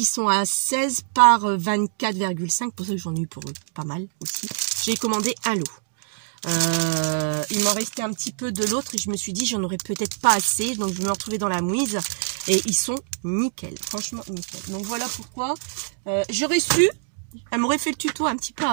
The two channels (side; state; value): left; silent; digital silence